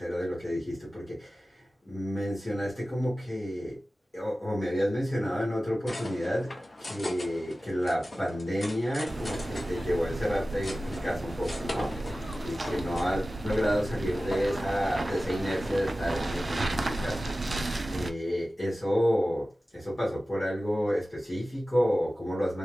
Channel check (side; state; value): both; normal; correlation 0.96